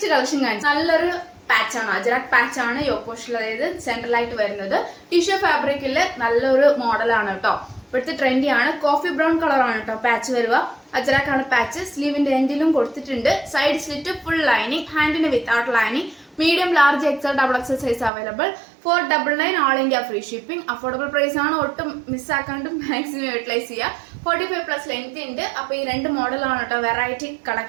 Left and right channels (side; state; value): left; drops out; at 18.1 s